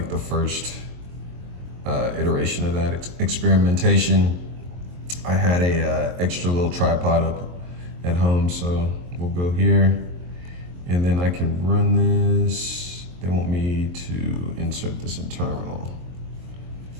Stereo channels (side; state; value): left; late; 23 ms